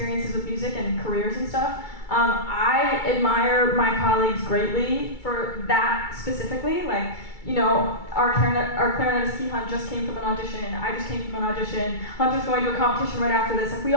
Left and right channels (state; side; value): late; right; 2.3 ms